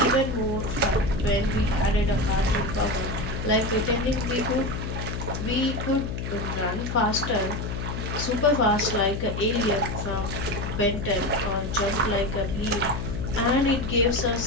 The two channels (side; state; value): left; noise; hum, 4 dB below the sound